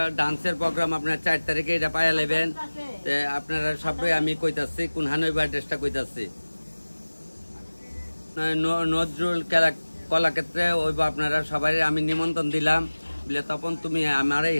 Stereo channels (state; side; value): inverted; both; correlation -1.00